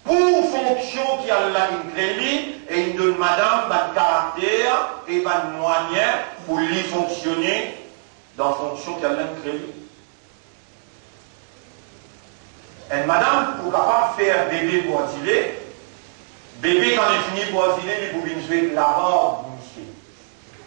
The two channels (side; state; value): left; silent; 64 dB below the other